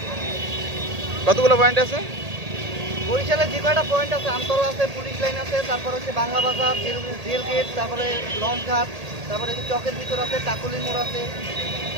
কতগুলো পয়েন্ট আছে? বরিশালের যে কয়টা পয়েন্ট আছে, আমতল আছে, পুলিশ লাইন আছে, তারপর হচ্ছে বাংলা বাজার, রেল গেট, তারপরে লঞ্চ ঘাট, তারপরে চকের ভিতর আছে, কাকুলি মোড় আছে।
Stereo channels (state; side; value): late; left; 1.8 ms